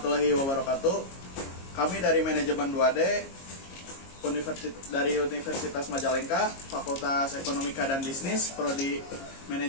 wabarakatuh. Kami dari manajemen 2D dari Universitas Majalengka, Fakultas Ekonomika dan Bisnis, Prodi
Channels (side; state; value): right; late; 22 ms